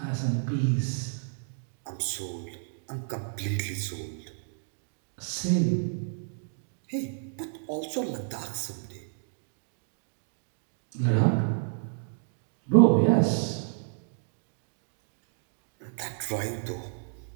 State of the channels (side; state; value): left; silent; digital silence